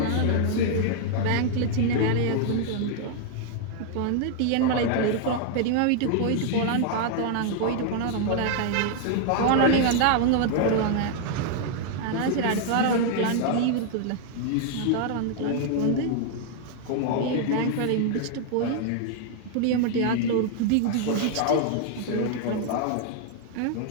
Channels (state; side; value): different; both; correlation 0.00